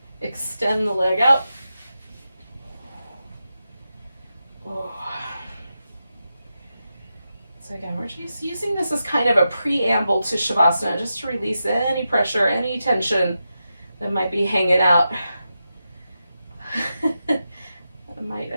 extend the leg out. So again, we're just using this as kind of a preamble to Shavasana, just to release any pressure, any tension that might be hanging out. I might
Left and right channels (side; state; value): both; inverted; correlation -0.89